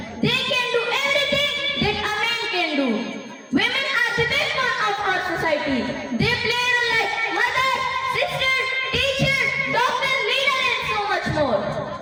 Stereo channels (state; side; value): identical; both; correlation 1.00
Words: They can do everything that a man can do. Women are the backbone of our society. They play a role like mother, sister, teacher, doctor, leader and so much more.